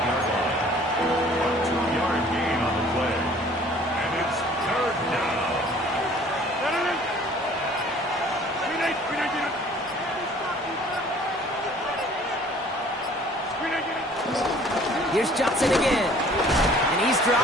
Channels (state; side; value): normal; both; correlation 0.53